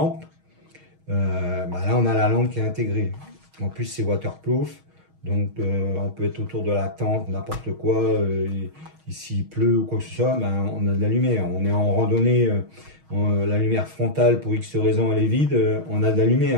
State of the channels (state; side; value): late; left; 6.3 ms